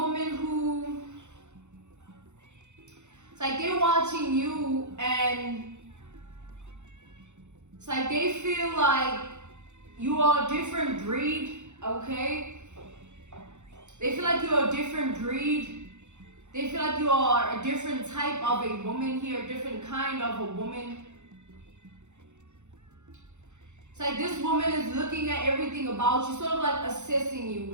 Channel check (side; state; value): left; late; 0.83 ms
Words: who, it's like they're watching you and it's like they feel like you are a different breed, okay? They feel like you're a different breed. They feel like you are a different type of a woman here, a different kind of a woman. It's like this woman is looking at everything about you, sort of like assessing